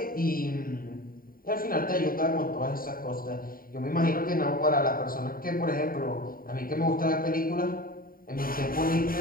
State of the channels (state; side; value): late; right; 0.42 ms